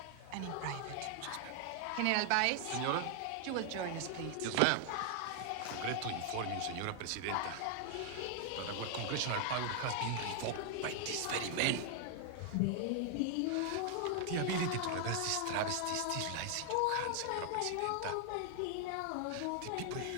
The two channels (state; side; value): different; both; correlation 0.00